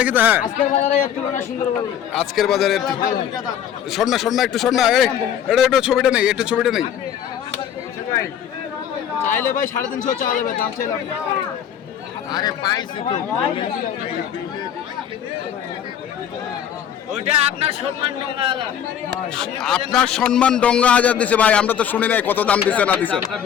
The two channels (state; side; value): quieter; right; 9.3 dB